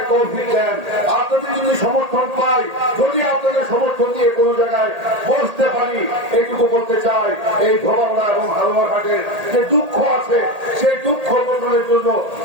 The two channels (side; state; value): left; late; 1.8 ms